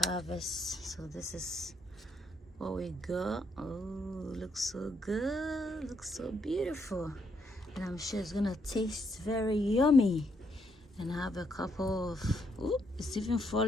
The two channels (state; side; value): normal; both; correlation 0.75